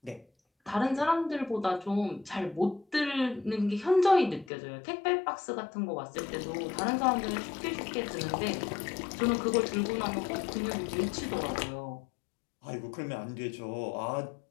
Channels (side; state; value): right; drops out; at 4.5 s